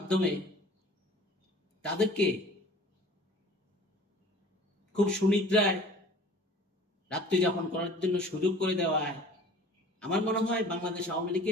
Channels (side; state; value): both; normal; correlation 0.46